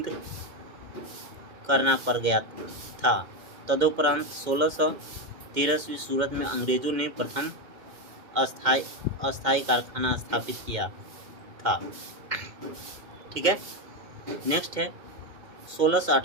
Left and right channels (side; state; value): left; late; 2.1 ms